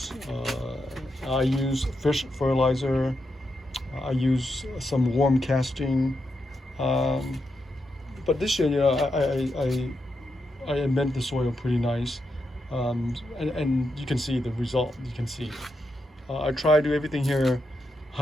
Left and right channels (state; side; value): normal; both; correlation 0.84